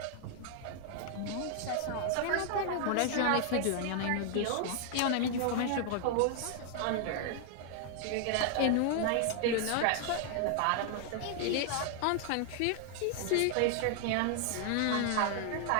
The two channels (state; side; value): different; both; correlation 0.00